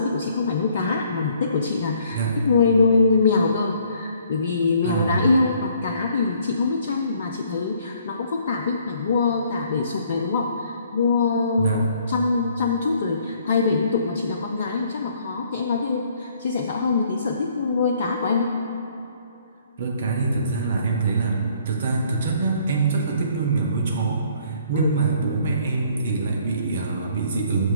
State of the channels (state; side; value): inverted; both; correlation -0.63